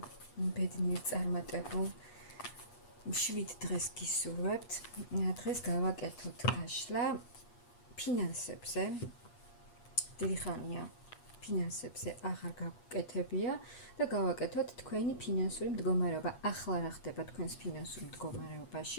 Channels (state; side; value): late; right; 8.3 ms